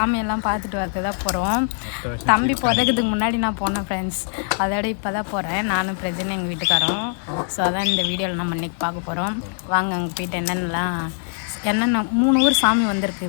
பார்த்துட்டு வரது தான் போகிறோம். தம்பி பிறகுதுக்கு முன்னாடி நான் போனேன் ஃப்ரெண்ட்ஸ். அதோட இப்போ தான் போகிறேன். நானும் பிரஜனை எங்கள் வீட்டுக்காரோம். ஸோ அதான் இந்த வீடியோவில் நம்ம இன்றைக்கி பார்க்க போகிறோம். வாங்க அங்கே போயிட்டு என்னென்னலாம் 3 ஊர் சாமி வந்திருக்கு,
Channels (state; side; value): silent; right; 59 dB below the other